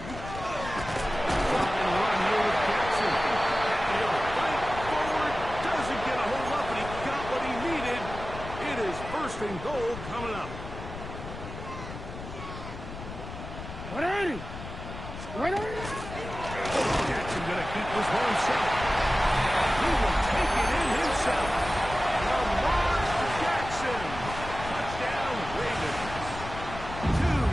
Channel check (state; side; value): noise; left; rumble, 10 dB below the sound